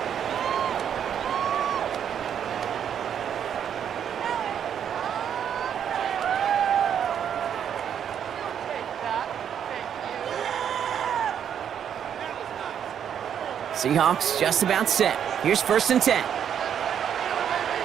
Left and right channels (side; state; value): left; quieter; 8.7 dB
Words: Seahawks just about set. Here's 1st and 10.